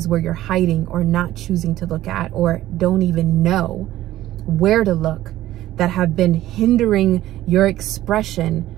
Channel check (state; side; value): quieter; left; 14.5 dB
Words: where you're hiding or not choosing to look at, or don't even know where to look, that have been hindering your expression